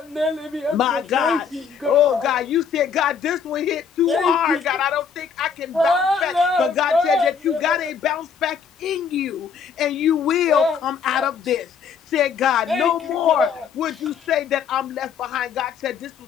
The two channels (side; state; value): right; quieter; 6.5 dB